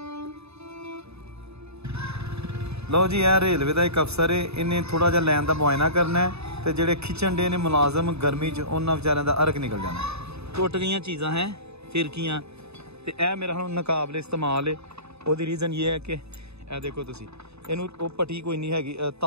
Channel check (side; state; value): left; late; 0.79 ms